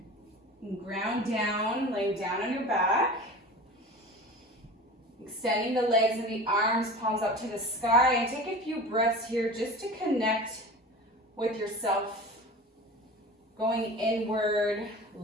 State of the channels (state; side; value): normal; both; correlation 0.36